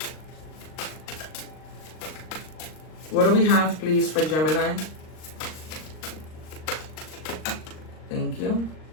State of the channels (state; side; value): late; right; 39 ms